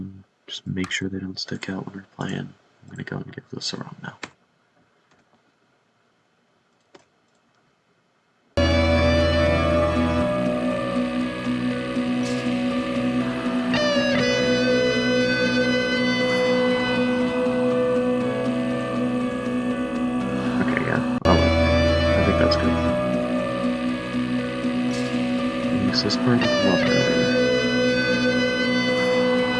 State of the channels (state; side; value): identical; both; correlation 1.00